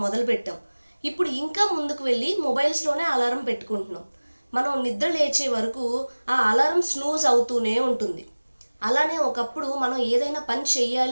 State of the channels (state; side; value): inverted; both; correlation -1.00